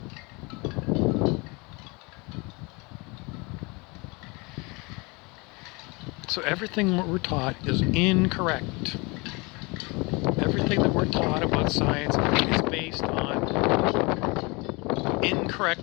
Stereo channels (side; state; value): right; quieter; 27.3 dB